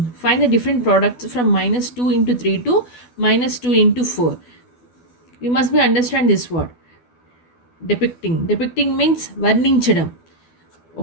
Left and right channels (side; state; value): right; late; 12 ms